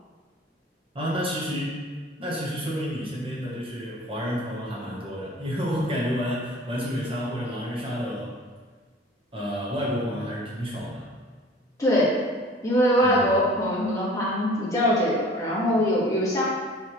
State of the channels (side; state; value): both; normal; correlation 0.47